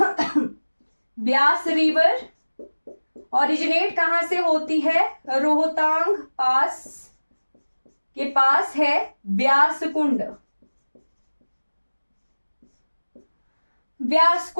ब्यास रिवर ओरिजिनेट कहां से होती है? रोहतांग पास के पास है ब्यास कुंड। ब्यास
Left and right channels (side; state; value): both; inverted; correlation -1.00